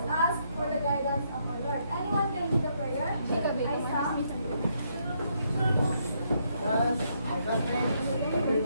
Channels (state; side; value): inverted; both; correlation -0.75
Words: ask for the guidance of our Lord. Anyone can do the prayer? Aisa?